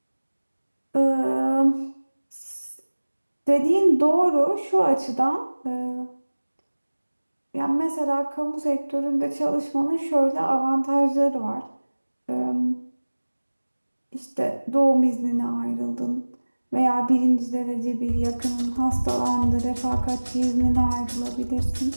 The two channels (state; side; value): inverted; both; correlation -1.00